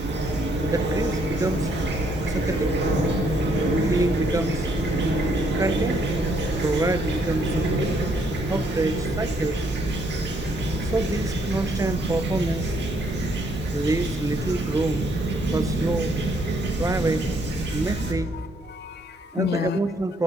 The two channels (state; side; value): normal; both; correlation 0.70